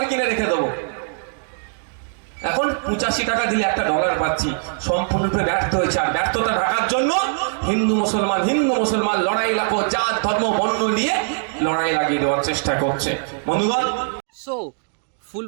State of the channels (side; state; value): left; silent; digital silence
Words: কিনে রেখে দেবো। এখন 85 টাকা দিলে $1 পাচ্ছি, সম্পূর্ণরূপে ব্যর্থ হয়েছে। আর ব্যর্থতা ঢাকার জন্য হিন্দু মুসলমান লড়াই লাগো, জাত ধর্ম বর্ণ নিয়ে লড়াই লাগিয়ে দেওয়ার চেষ্টা করছে। বন্ধুগণ, সো ফুল